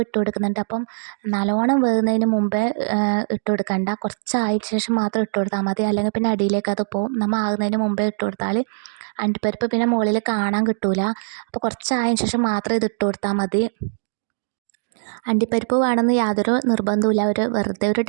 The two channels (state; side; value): silent; left; digital silence